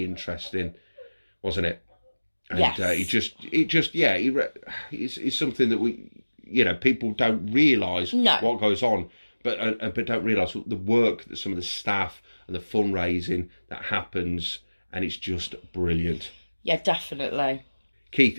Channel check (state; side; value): inverted; both; correlation -1.00